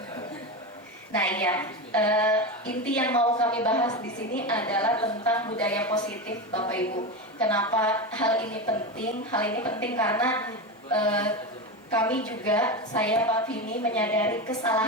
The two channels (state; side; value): normal; both; correlation 0.19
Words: Nah iya, inti yang mau kami bahas di sini adalah tentang budaya positif Bapak Ibu. Kenapa hal ini penting? Hal ini penting karena kami juga, saya Pak Vini menyadari